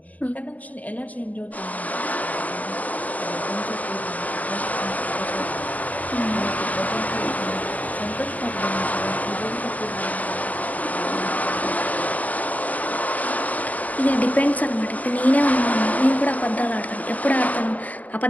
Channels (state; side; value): late; right; 0.074 ms